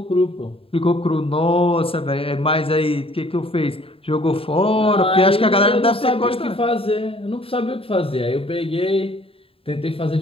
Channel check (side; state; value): right; late; 0.27 ms